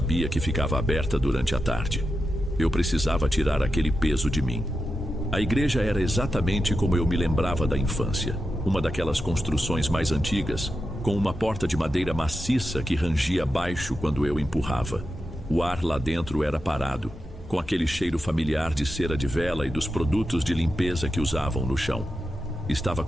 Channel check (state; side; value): normal; both; correlation 0.89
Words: que ficava aberta durante a tarde. Eu precisava tirar aquele peso de mim. A igreja era exatamente como eu me lembrava da infância. Uma daquelas construções mais antigas, com uma porta de madeira maciça que rangia baixo quando eu empurrava. O ar lá dentro era parado, com aquele cheiro familiar de cera de vela e dos produtos de limpeza que usavam no chão. Estava